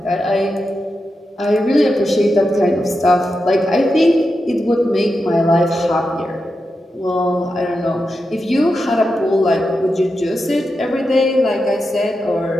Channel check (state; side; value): normal; both; correlation 0.89